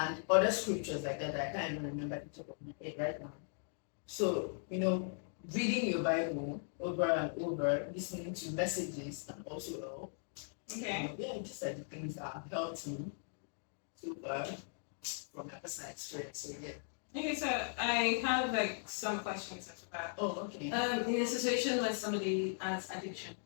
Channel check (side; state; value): right; silent; digital silence